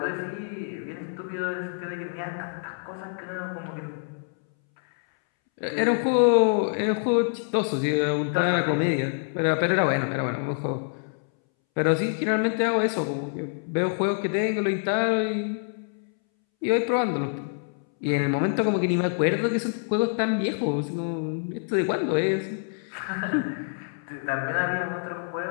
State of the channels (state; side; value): silent; right; 61 dB below the other